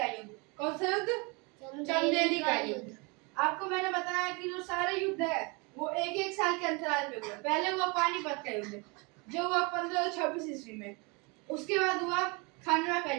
युद्ध। कौन सा युद्ध? चंदेली का युद्ध। आपको मैंने बताया कि जो सारे युद्ध है वो 1-1 साल के अंतराल पे हुए। पहले हुआ पानीपत का युद्ध जो हुआ 1526 ईस्वी में। उसके बाद हुआ खानवा का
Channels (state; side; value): quieter; left; 29.6 dB